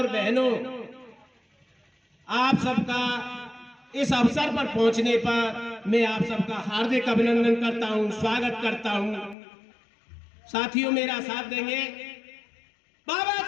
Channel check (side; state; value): right; drops out; at 9.3 s